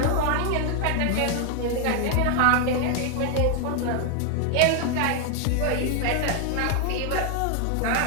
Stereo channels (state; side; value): different; both; correlation 0.00